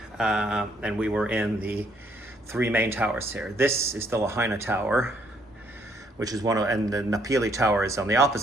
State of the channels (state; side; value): normal; both; correlation 0.69